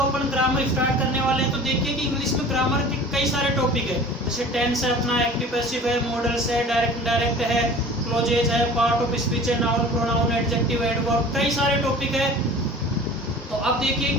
ग्रामर स्टार्ट करने वाले हैं, तो देखिए कि इंग्लिश में ग्रामर के कई सारे टॉपिक है। जैसे टेंस है, अपना एक्टिव पैसिव है, मॉडल्स है, डायरेक्ट इनडायरेक्ट है, क्लोजेज है, पार्ट ऑफ स्पीच है, नाउन प्रोनाउन एडजेक्टिव एडवर्ब, कई सारे टॉपिक है। तो अब देखिए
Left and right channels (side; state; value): both; normal; correlation 0.42